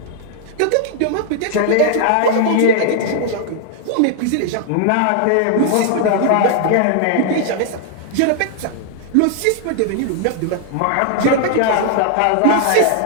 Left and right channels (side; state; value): both; different; correlation 0.00